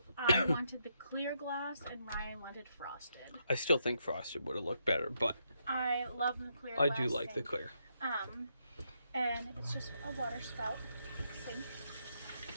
I wanted the clear glass and Ryan wanted frosted. I still think frosted would have looked better, but I love the clear glass. I do like sink. the clear. And it's just a water spout. sink.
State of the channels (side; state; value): both; inverted; correlation -0.78